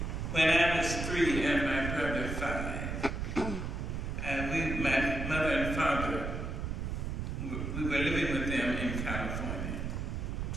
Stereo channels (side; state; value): right; noise; rumble, 3 dB below the sound